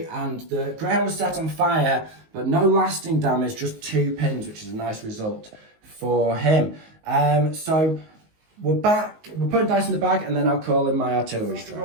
and the Greyhound was set on fire, but no lasting damage, just 2 pins, which is a nice result for him. So we're back. We're putting dice in the bag, and then I'll call in my artillery strike.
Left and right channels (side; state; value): left; late; 19 ms